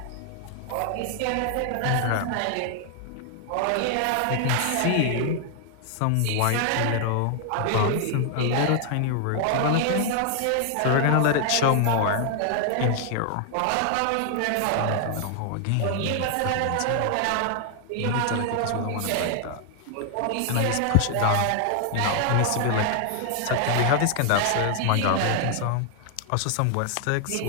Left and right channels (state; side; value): different; both; correlation 0.00